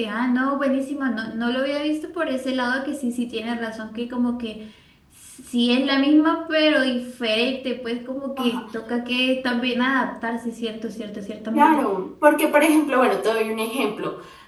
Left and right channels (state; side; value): identical; both; correlation 1.00